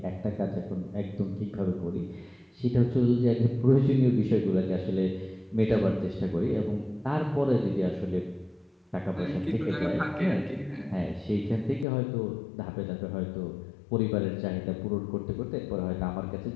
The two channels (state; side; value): drops out; right; at 11.9 s